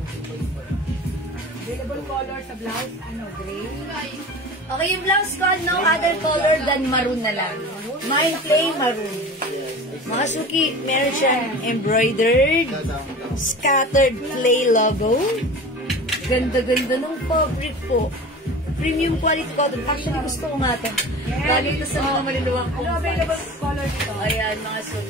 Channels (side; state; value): both; normal; correlation 0.36